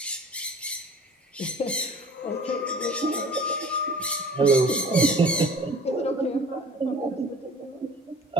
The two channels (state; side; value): normal; both; correlation 0.45